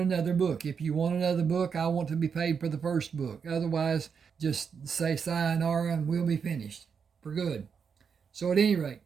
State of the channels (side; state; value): left; quieter; 6.4 dB